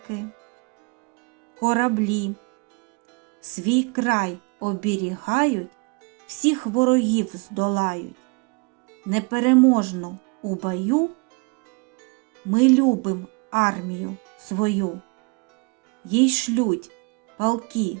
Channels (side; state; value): left; quieter; 31.6 dB